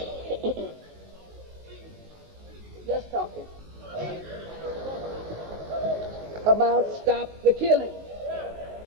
Just talking about stop the killing.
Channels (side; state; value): left; late; 19 ms